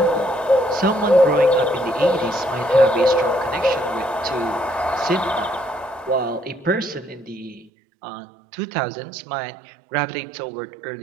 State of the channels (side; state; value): left; drops out; at 7.7 s